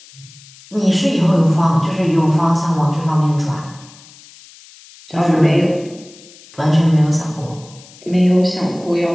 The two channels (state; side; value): noise; left; hiss, 23 dB below the sound